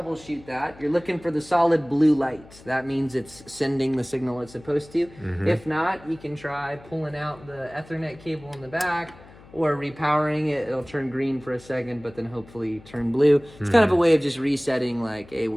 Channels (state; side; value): noise; left; hum, 22 dB below the sound